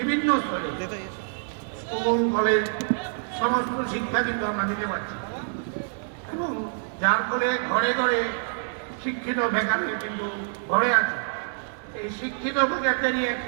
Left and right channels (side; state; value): left; silent; 60 dB below the other